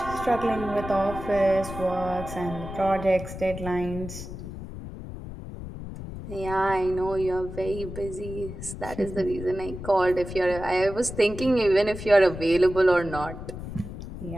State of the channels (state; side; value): noise; left; rumble, 10 dB below the sound